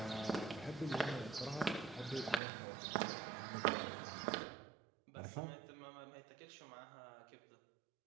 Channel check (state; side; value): drops out; left; at 2.4 s